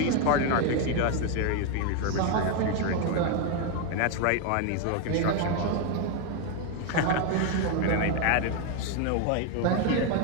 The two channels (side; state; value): both; different; correlation 0.01